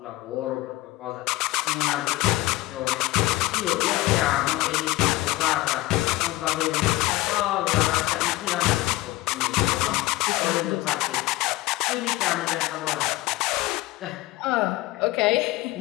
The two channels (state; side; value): quieter; right; 18.9 dB